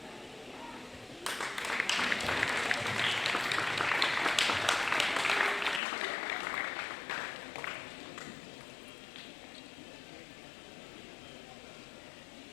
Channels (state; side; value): drops out; right; at 5.8 s